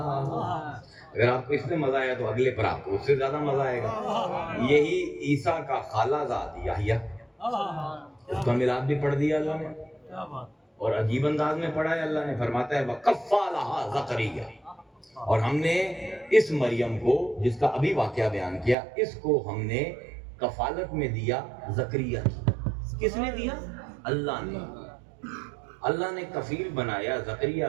اگر آپ کو اس میں مزہ آیا تو اگلے پر آپ کو اس سے زیادہ مزہ آئے گا۔ یہی عیسیٰ کا خالہ زاد یحییٰ، اس کا میلاد بھی پڑھ دیا اللہ نے، اور عجیب انداز میں پڑھا ہے۔ اللہ نے فرماتا ہے وَكَفَّلَهَا زَكَرِيَّا، اور ہم نے اس مریم کو، جس کا ابھی واقعہ بیان کیا، اس کو ہم نے کفالت میں دیا زکریا کی۔ کس نے دیا؟ اللہ نے۔ اللہ نے کفیل بنایا زکریا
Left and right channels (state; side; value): drops out; left; at 18.8 s